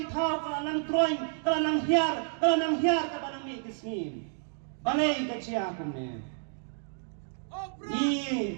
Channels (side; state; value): left; silent; digital silence